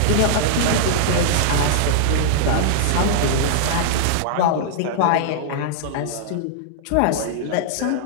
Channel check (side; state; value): both; different; correlation -0.01